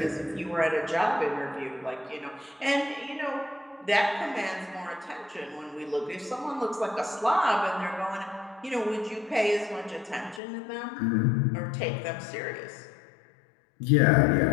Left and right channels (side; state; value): right; drops out; at 10.4 s